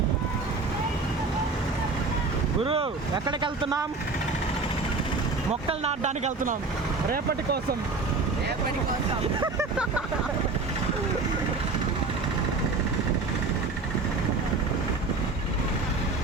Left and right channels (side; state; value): left; quieter; 3.9 dB